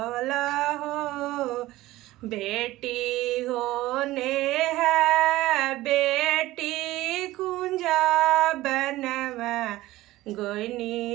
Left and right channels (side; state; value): left; quieter; 17.2 dB